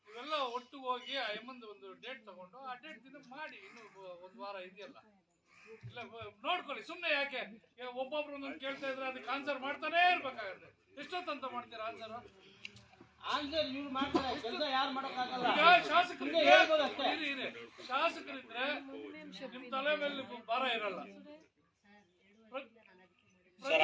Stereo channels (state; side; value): identical; both; correlation 1.00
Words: ಒಟ್ಟು ಹೋಗಿ ಒಂದು ಡೇಟ್ ತಗೊಂಡು ಆ ಡೇಟ್ ದಿನ ಮಾಡಿ. ಇನ್ನು ಒಂದು ವಾರ ಇದೆಯಲ್ಲ, ಇಲ್ಲ ನೋಡ್ಕೊಳ್ಳಿ. ಸುಮ್ಮನೆ ಯಾಕೆ ಒಬ್ಬೊಬ್ರು ಒಂದೊಂದು ಕೇಳ್ತಾ ಇದ್ರೆ ಅದಕ್ಕೆ ಆನ್ಸರ್ ಮಾಡ್ತಾನೇ ಇರ್ಬೇಕಾಗತ್ತೆ. ಎಷ್ಟೊತ್ತಂತ ಮಾಡ್ತೀರಾ ಆನ್ಸರ್? ಶಾಸಕರಿದ್ರೆ ನಿಮ್ ತಲೆ ಮೇಲೆ ಭಾರ ಇರಲ್ಲ.